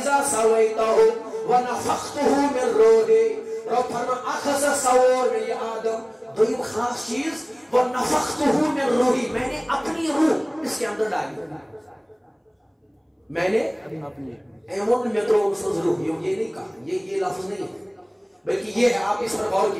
سَوَيْتَهُ وَنَفَخْتُهُ مِن روحِي. رب فرما اکھ ہسا سوور میں یہ آدم. دویم خاص چیز وَنَفَخْتُهُ مِن روحِي. میں نے اپنی روح اس کے اندر ڈالی. میں نے ایمون میں تو روح یہ نہیں کہا یہ لفظ نہیں ہے بلکہ یہ ہے. آپ اس پر غور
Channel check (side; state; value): both; identical; correlation 1.00